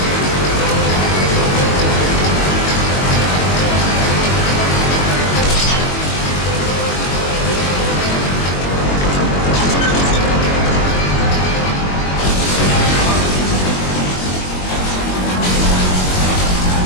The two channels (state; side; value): late; right; 22 ms